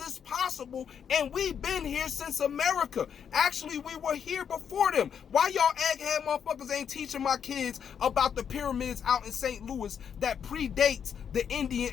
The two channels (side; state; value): right; quieter; 7.8 dB